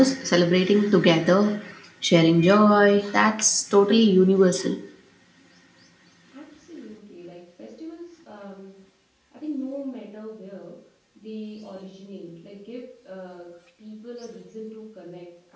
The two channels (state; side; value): identical; both; correlation 1.00